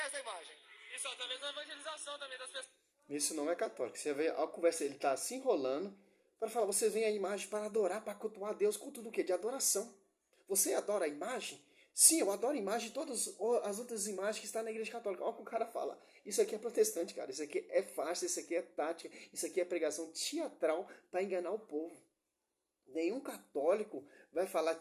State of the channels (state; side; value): identical; both; correlation 1.00